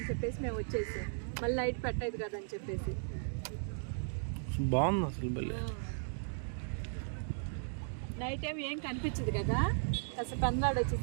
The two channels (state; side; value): silent; left; digital silence